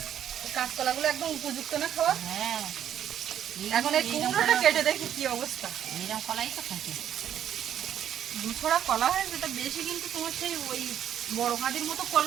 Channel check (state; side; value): quieter; left; 10.1 dB